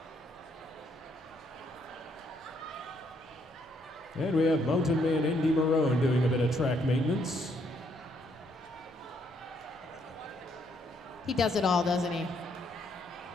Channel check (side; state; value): both; normal; correlation 0.71